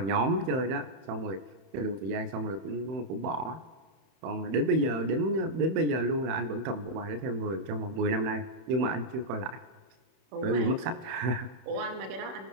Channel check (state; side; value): late; left; 31 ms